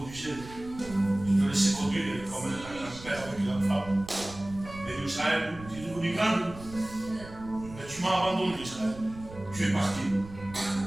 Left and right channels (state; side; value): noise; right; rumble, 16 dB below the sound